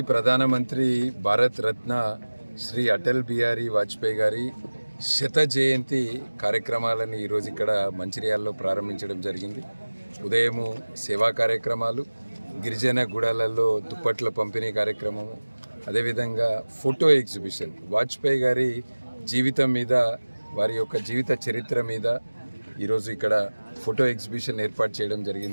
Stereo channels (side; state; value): both; inverted; correlation -1.00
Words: ప్రధానమంత్రి భారత రత్న శ్రీ అటల్ బిహారీ వాజ్పేయి గారి శత జయంతి కార్యక్రమాలను ఈరోజు ఇక్కడ మంచిర్యాలలో ప్రారంభించడం జరిగింది. ఉదయము సేవా కార్యక్రమాలు, గిరిజన గుడాలలో దుప్పట్ల పంపిణీ కార్యక్రమము, అదేవిధంగా ఫోటో ఎగ్జిబిషన్, వాజ్పేయి గారి జీవితం మీద, వారి యొక్క జీవిత చరిత్ర మీద ఈరోజు ఇక్కడ ఫోటో ఎగ్జిబిషన్ ఏర్పాటు చేయడం